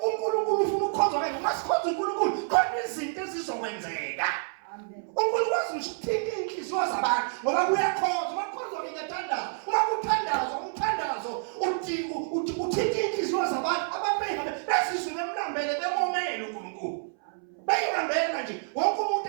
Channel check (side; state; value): left; silent; 59 dB below the other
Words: uNkulunkulu ufuna ukukhonza wena. Uma sikhonza uNkulunkulu khona izinto ezizokwenzeka. uNkulunkulu wazi ukuthinta inhliziyo zabantu ngoba kuyakhonza. Uma kukhonzwa ngiyathandaza. Uma kuthandazwa umthandazo uthinta inhliziyo zabantu abantu besizwe bemlambele bemomele uNkulunkulu. Bayihambela nje wonke umuntu